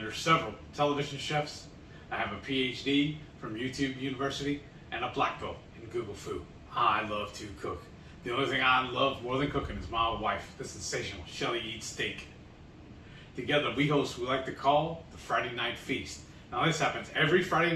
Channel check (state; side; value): identical; both; correlation 1.00